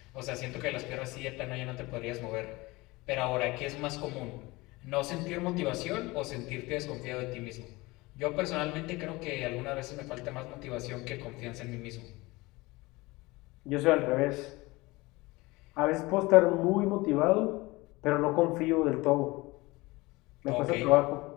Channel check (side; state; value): right; quieter; 22.1 dB